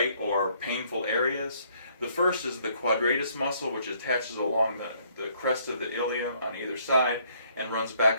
or painful areas. The first is the quadratus muscle, which attaches along the crest of the ilium on either side and runs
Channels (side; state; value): both; inverted; correlation -0.65